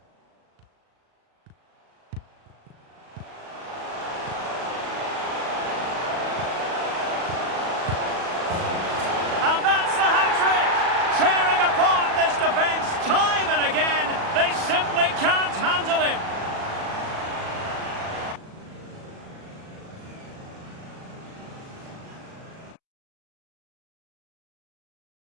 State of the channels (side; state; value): left; late; 37 ms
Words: Tearing apart this defence time and again. They simply can't handle him.